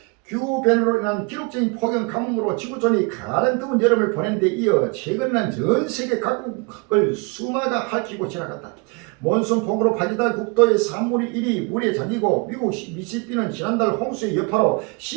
기후변화로 인한 기록적인 폭염 가뭄으로 지구촌이 가는 더운 여름을 보낸 데 이어 최근에는 전 세계 각국을 수마가 핥히고 지나갔다. 몬순 폭우로 파기다 국토의 3분의 1이 물에 잠기고 미국 미시시피는 지난달 홍수의 여파로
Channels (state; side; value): quieter; left; 30.6 dB